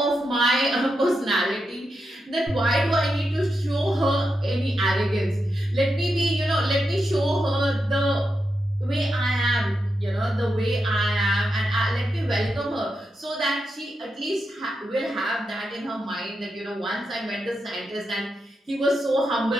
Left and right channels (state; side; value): normal; both; correlation 0.86